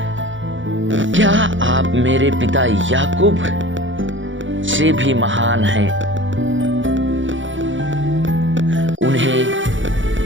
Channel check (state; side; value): late; left; 0.56 ms